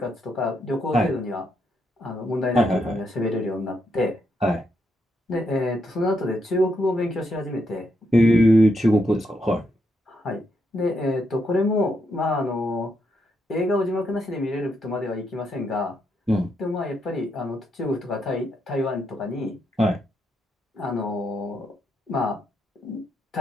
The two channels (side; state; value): both; normal; correlation 0.79